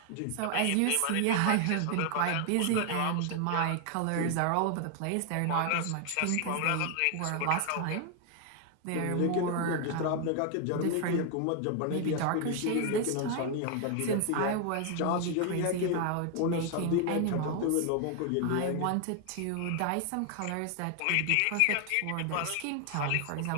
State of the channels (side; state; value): both; different; correlation 0.00